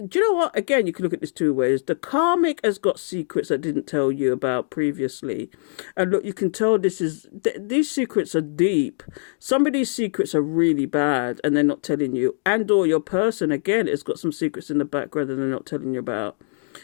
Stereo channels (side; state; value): right; silent; digital silence